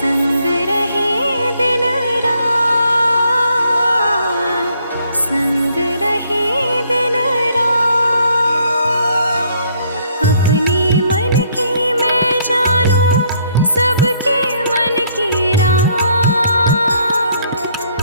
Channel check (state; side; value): inverted; both; correlation -0.67